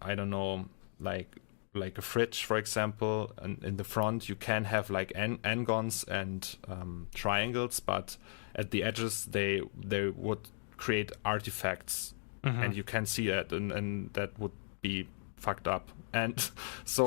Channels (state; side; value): silent; right; digital silence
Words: I don't know, like a fridge, for example, and in the front you can have like n-gons and triangles, but at the edges they would create artifacts, and you can see that, and that would be fucked up. And